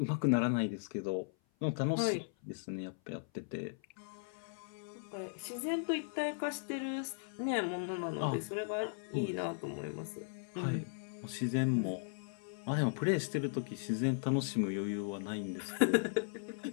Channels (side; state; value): right; silent; 53 dB below the other